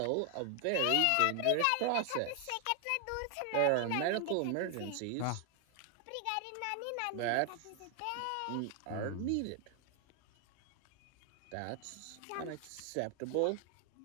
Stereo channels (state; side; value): different; both; correlation 0.00